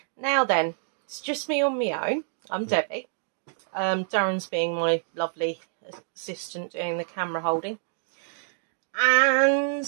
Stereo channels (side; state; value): left; silent; digital silence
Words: Now then, it's just me on my own. I'm Debbie. Darren's being my lovely assistant doing the camera holding. And